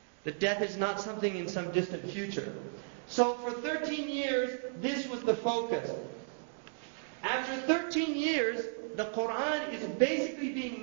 That death is not something in some distant future. So for 13 years, this was the focus. After 13 years, the Quran is basically being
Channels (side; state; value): left; silent; digital silence